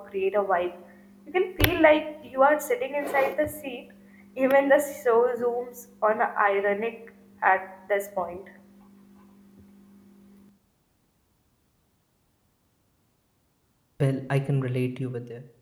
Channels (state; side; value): identical; both; correlation 1.00